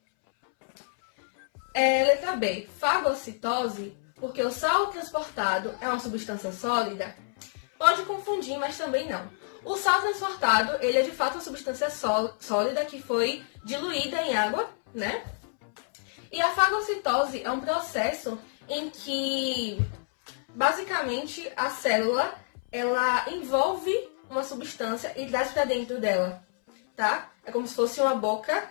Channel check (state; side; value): silent; right; 59 dB below the other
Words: Letra B, fagocitose, porque o sal transportado é uma substância sólida. Pode confundir, mas também não. O sal transportado, ele é de fato uma substância sólida que foi diluída em água, né? E a fagocitose é um processo em que, basicamente, a célula, ela envolve uma substância e traz para dentro dela, tá? É como se fosse uma